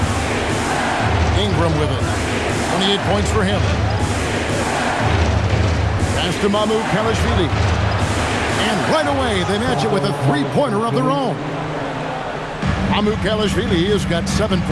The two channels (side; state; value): both; identical; correlation 1.00